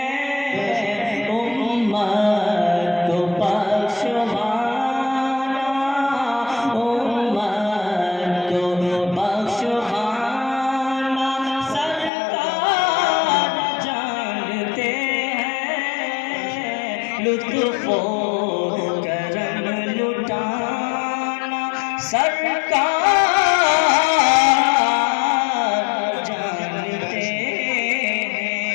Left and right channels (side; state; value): right; drops out; at 12.1 s